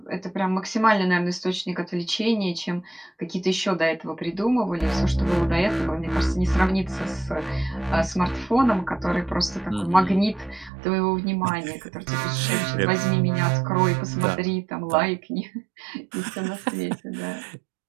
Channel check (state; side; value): drops out; left; at 10.7 s